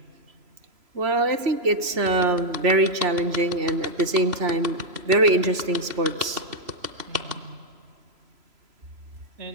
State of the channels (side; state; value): left; late; 3.0 ms